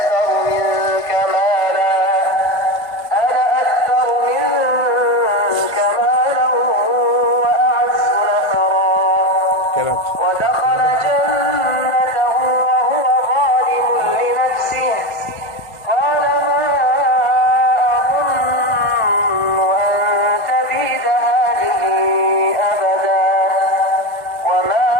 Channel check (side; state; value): right; late; 1.4 ms